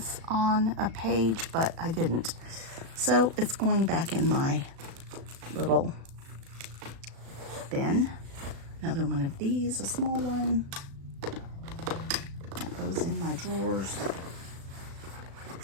on a page, but I didn't. So it's going back in my little bin. Another one of these, a small one. That goes in my drawers.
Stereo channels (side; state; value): left; late; 36 ms